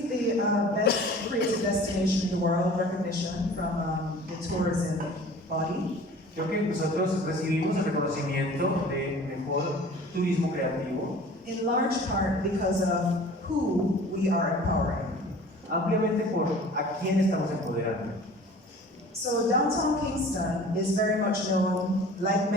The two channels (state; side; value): normal; both; correlation 0.45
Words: the best creative destination in the world recognition from the tourism body. Creo que nosotros recibimos el reconocimiento de mejor turismo creativo, In large part because of who we are empowering. ampliamente por a quién estamos empoderando. So downtown Kingston is very much known, like